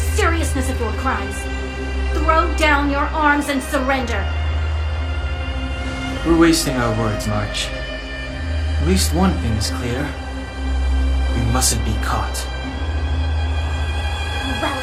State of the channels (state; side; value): identical; both; correlation 1.00